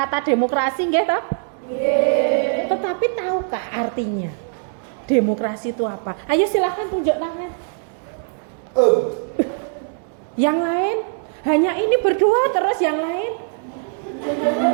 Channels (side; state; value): left; silent; 65 dB below the other